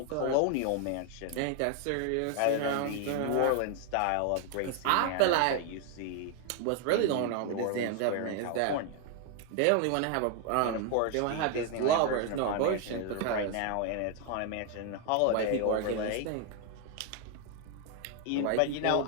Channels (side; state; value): both; different; correlation 0.00